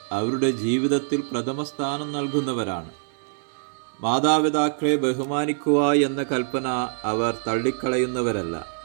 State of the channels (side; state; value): left; silent; digital silence